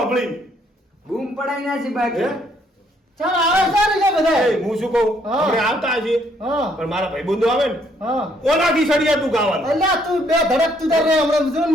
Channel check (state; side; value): normal; both; correlation 0.68